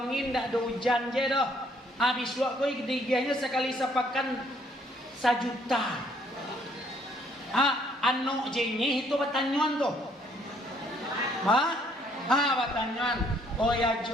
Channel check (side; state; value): both; normal; correlation 0.65